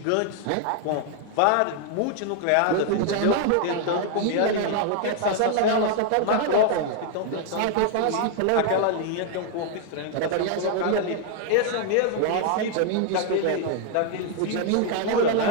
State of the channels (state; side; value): different; both; correlation 0.00